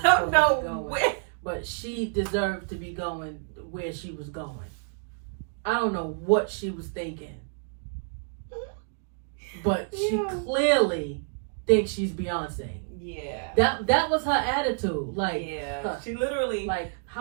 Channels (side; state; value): left; silent; digital silence